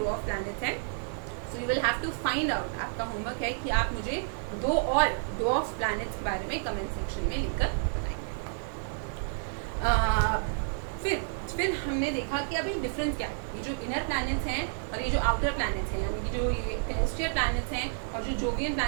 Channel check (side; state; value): left; silent; 58 dB below the other